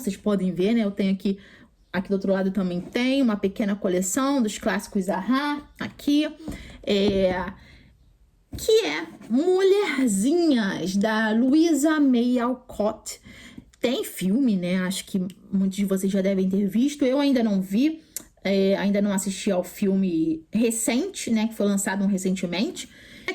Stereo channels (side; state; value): both; identical; correlation 1.00